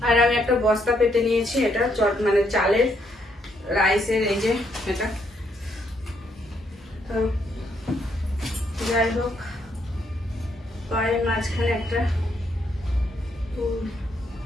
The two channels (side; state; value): both; normal; correlation 0.74